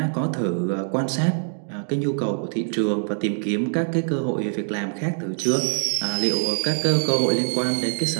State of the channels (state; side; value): silent; left; digital silence